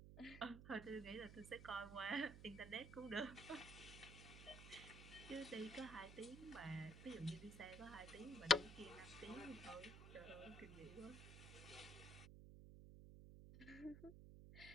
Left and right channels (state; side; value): noise; right; hum, 12 dB below the sound